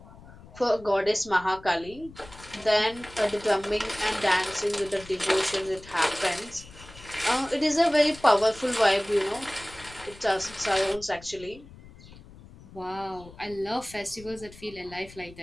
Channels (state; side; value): noise; left; rumble, 19 dB below the sound